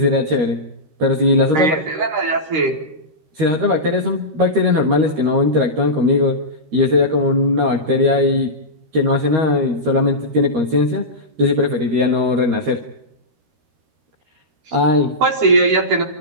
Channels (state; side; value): late; left; 13 ms